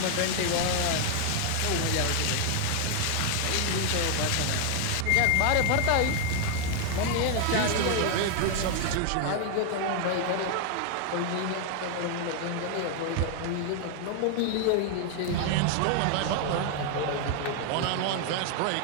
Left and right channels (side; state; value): both; different; correlation 0.01